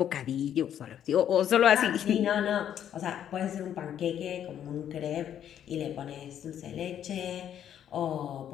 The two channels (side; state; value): right; quieter; 9.9 dB